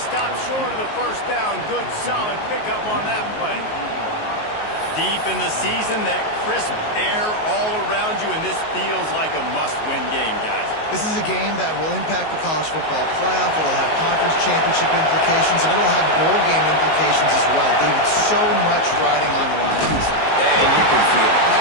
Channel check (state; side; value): late; right; 19 ms